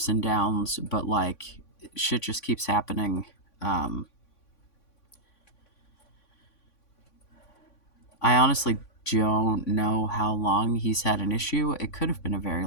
and downs, but like, shit just keeps happening. Um, I honestly don't know how long he's had an issue. It could have been a very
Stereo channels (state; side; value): late; right; 3.5 ms